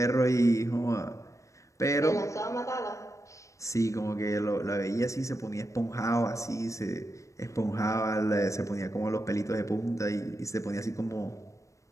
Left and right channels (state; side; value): late; right; 0.15 ms